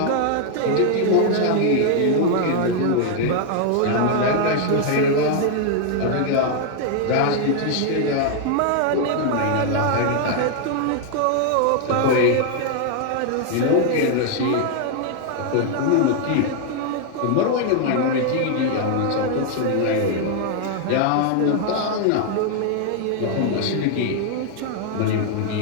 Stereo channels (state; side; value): different; both; correlation 0.00